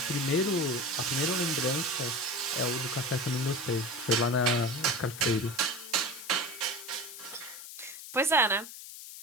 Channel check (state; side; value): noise; left; hiss, 12 dB below the sound